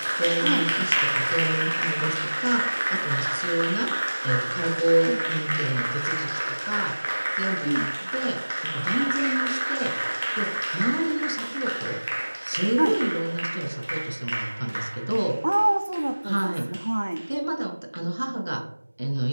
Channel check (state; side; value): inverted; both; correlation -1.00